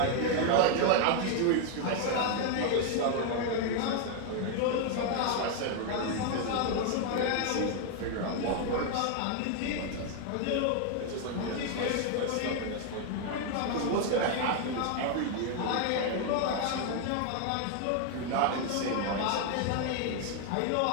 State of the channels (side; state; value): both; different; correlation 0.00